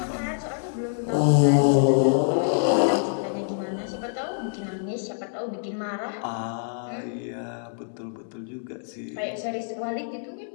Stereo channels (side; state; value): right; silent; 61 dB below the other